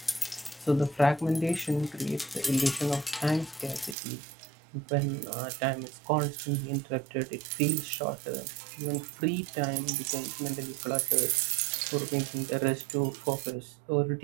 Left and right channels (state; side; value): drops out; left; at 4.0 s